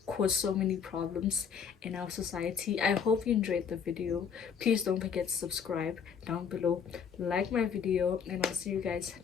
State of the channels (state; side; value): quieter; right; 7.0 dB